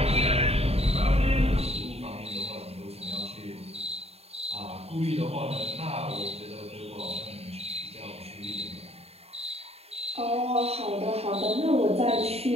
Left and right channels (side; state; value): left; late; 0.30 ms